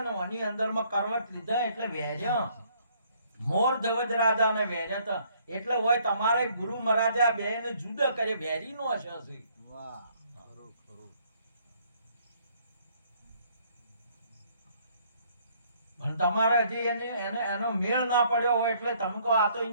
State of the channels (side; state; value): both; inverted; correlation -0.64